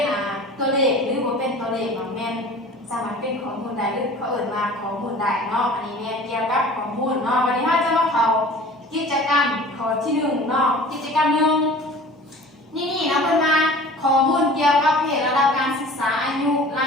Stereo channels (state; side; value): normal; both; correlation 0.43